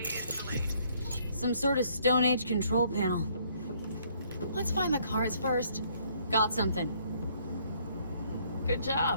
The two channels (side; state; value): both; inverted; correlation -0.65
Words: is delayed. Some sort of Stone Age control panel. Let's find the cards first. Got something. Good